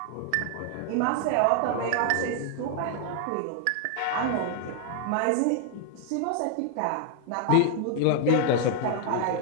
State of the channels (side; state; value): both; different; correlation 0.00